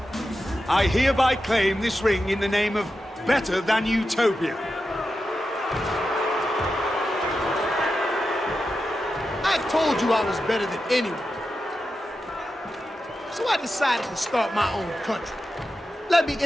I hereby claim this ring in the name of Better Than Utopia. I told you I was better than anyone. So I decided to start my own country. Let me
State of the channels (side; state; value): both; normal; correlation 0.90